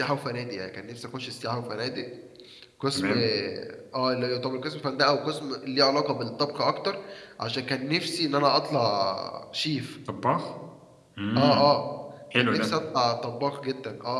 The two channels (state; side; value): identical; both; correlation 1.00